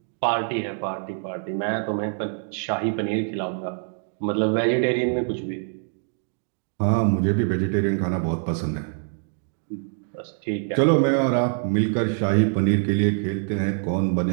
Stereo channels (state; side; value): silent; left; 59 dB below the other